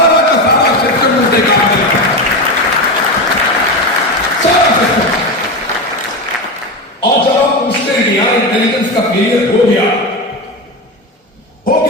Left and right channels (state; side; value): normal; both; correlation 0.18